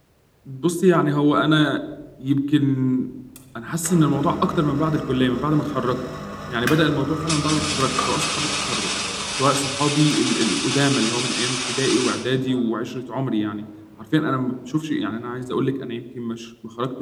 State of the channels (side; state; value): both; identical; correlation 1.00